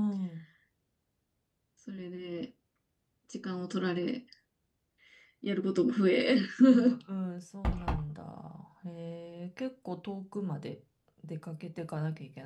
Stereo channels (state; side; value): identical; both; correlation 1.00